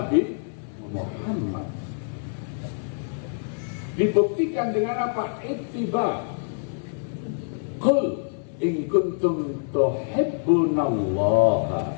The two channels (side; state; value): right; silent; 61 dB below the other